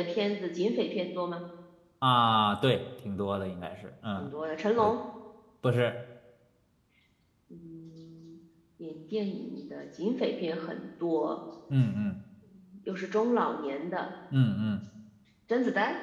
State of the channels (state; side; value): identical; both; correlation 1.00